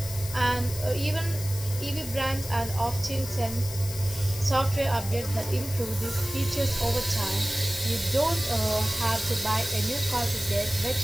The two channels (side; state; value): left; noise; hiss, 11 dB below the sound